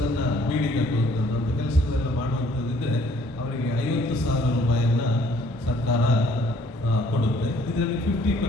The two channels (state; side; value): normal; both; correlation 0.60